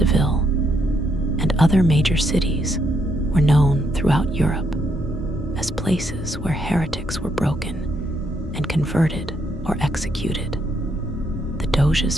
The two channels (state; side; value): normal; both; correlation 0.75